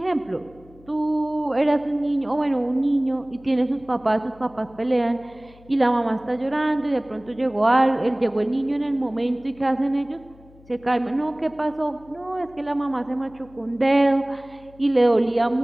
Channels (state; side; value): noise; left; hum, 25 dB below the sound